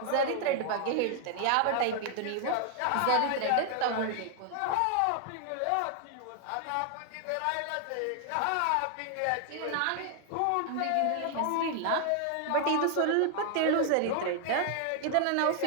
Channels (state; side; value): different; both; correlation 0.00